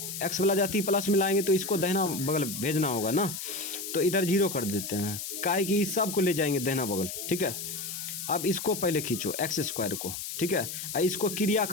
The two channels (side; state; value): left; noise; hiss, 6 dB below the sound